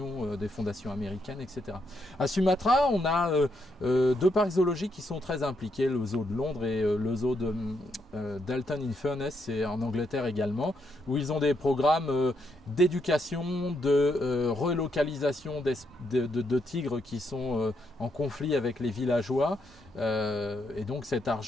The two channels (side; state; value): both; normal; correlation 0.78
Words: des fondations américaines, etc. À Sumatra, on a deux parcs zoologiques qui sont très impliqués, le zoo de Londres et le zoo de Dalton-in-Furness, c'est en Angleterre également, où ils ont des programmes d'éducation, de relocalisation de tigres qui sont en conflit avec les villageois. Et donc cet